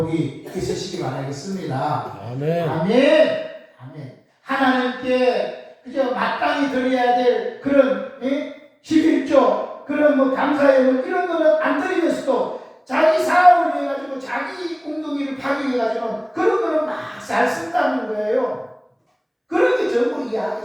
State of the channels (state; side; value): identical; both; correlation 1.00